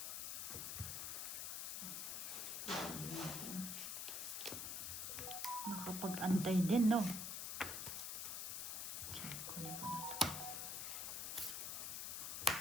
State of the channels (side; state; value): left; noise; hiss, 3 dB below the sound